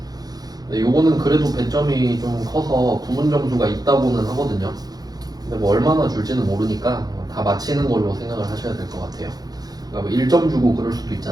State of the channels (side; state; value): left; late; 0.19 ms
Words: 근데 요거는 그래도 배점이 좀 커서 부분 점수가 있다고는 하거든요. 근데 뭐 얼마나 줄지는 모르니까 다 맞히는 걸로 생각을 하셔야 될 것 같아요. 그러니까 뭐 1점 주고 그럴 수도